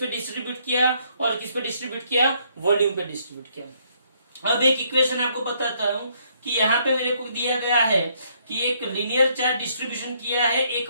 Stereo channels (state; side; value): inverted; both; correlation -0.69